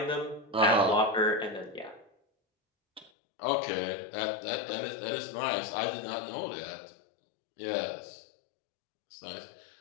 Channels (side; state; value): right; drops out; at 3.1 s